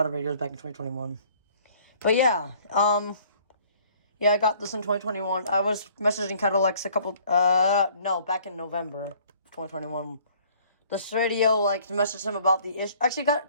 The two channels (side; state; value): both; inverted; correlation -0.57